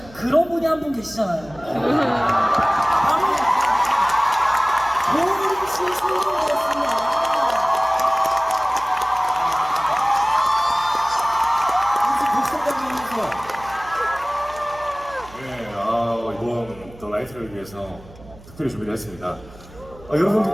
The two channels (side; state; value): right; noise; hum, 21 dB below the sound